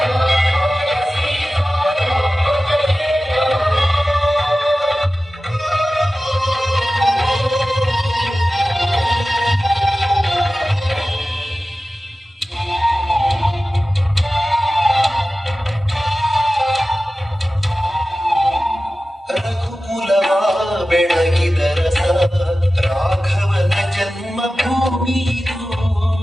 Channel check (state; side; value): normal; both; correlation 0.95